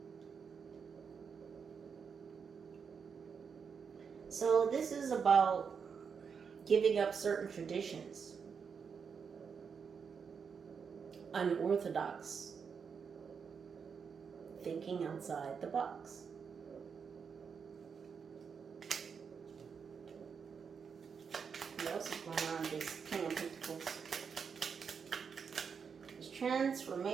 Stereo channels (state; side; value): quieter; left; 6.3 dB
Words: So this is about giving up certain traditions, unorthodox, thinking outside the box. What else is going on this King of Pentacles? This